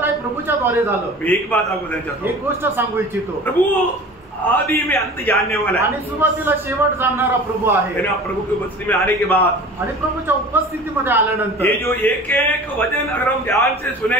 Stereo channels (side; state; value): both; normal; correlation 0.40